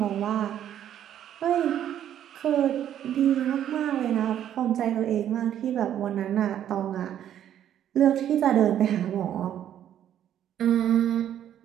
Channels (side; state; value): left; quieter; 10.6 dB